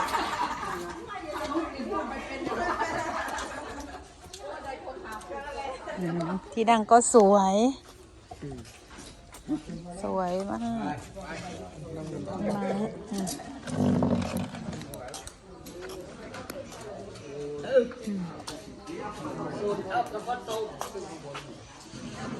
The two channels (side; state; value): both; identical; correlation 1.00